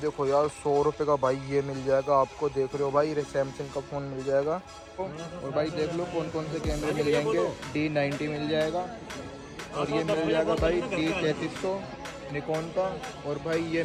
देखो यार 100 रुपये का भाई ये मिल जाएगा आपको। देख रहे हो भाई सैमसंग का फ़ोन मिल जाएगा। और भाई देख लो कौन कौन से कैमरे मिल जाएंगे। D90 मिल जाएगा, और ये मिल जाएगा भाई D3300 निकॉन का। और भाई ये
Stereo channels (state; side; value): identical; both; correlation 1.00